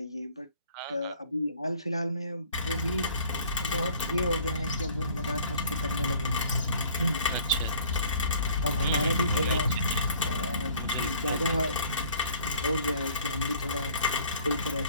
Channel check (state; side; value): inverted; both; correlation -0.53